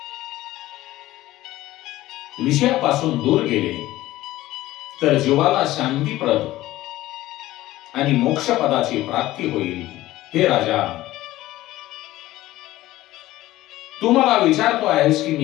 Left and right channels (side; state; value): right; quieter; 16.2 dB